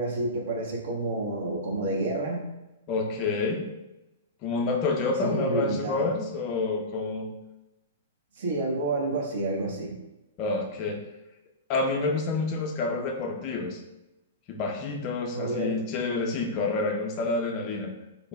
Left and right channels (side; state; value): both; normal; correlation -0.18